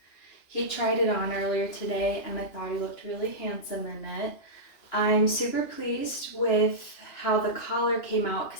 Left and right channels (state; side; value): late; right; 2.9 ms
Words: He tried it on earlier today, and I thought he looked really handsome in it. I'm super pleased with how the collar came out,